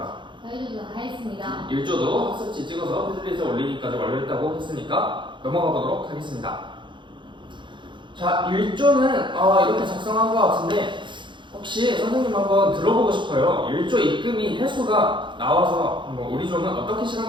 저희도 다 했습니다. 1조도 학습지 찍어서 패들릿에 올리기까지 완료했다고 했으니까 넘어가 보도록 하겠습니다. 자, 1조는 이렇게 작성한 것 같은데 혹시 선생님 한번 들어보고 싶어요. 1조 입금이 횟수가 나와서 한번 우리 조는 어떻게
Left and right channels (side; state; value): left; late; 0.23 ms